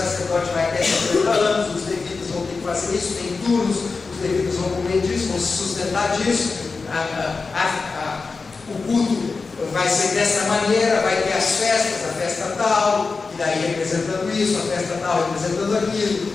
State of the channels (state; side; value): quieter; right; 4.3 dB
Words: vai ter 50 anos, os levitas vão ter que fazer isso, tem turnos, os levitas vão comer disso, vão se sustentar disso, o culto vai ser dessa maneira, vai ter as festas, a festa tal, e daí representando isso, a festa tal representando aquilo,